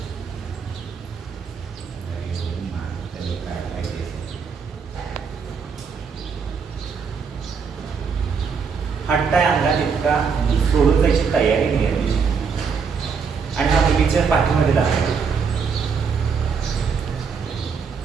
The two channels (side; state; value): left; quieter; 5.8 dB